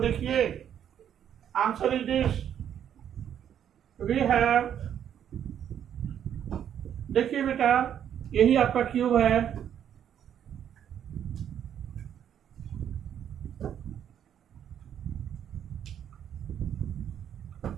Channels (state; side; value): quieter; left; 9.4 dB